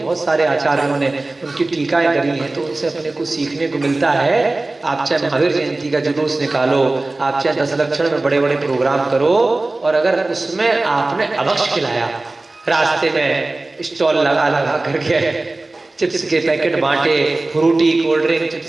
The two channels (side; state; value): left; quieter; 3.0 dB